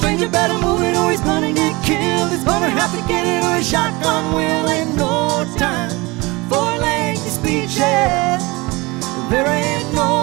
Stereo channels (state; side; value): quieter; left; 23.8 dB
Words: better move it or he's gonna get killed. He's gonna have to get it or a shotgun will. Ain't no time for lengthy speeches. There ain't